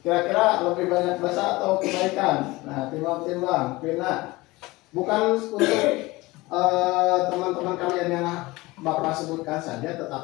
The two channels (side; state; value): right; quieter; 21.2 dB